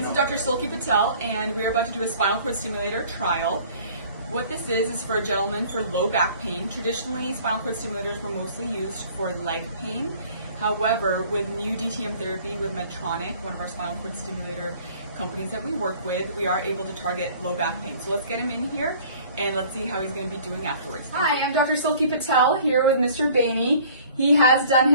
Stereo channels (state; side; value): inverted; both; correlation -0.51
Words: is Dr. Silky Patel, and we're about to do a spinal cord stimulator trial. What this is for a gentleman for low back pain. Traditionally, spinal cord stimulators were mostly used for leg pain. However, with new DTM therapy with Medtronic, one of our spinal cord stimulator companies that we work with, we are able to target low back pain. So let's get him in here and let's see how he's going to be doing afterwards. Hi, I'm Dr. Silky Patel here with Mr. Bainey. He has done